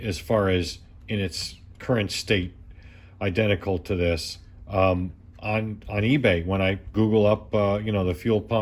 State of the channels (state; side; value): identical; both; correlation 1.00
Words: far as in its current state, identical to this on eBay. When I Google up, the fuel